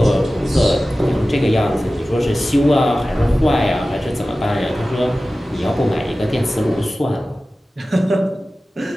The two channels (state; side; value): normal; both; correlation 0.96